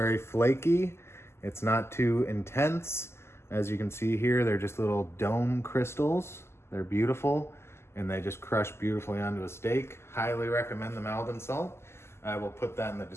flaky. It's not too intense. As you can see here, they're just little dome crystals. They're beautiful and they just crush beautifully onto a steak. Highly recommend the Maldon salt. I will put that in the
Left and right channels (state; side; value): late; right; 0.12 ms